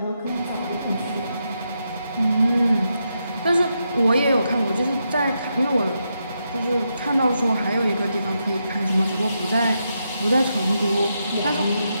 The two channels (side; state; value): both; inverted; correlation -0.83